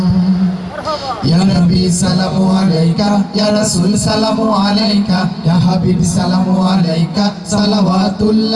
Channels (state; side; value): identical; both; correlation 1.00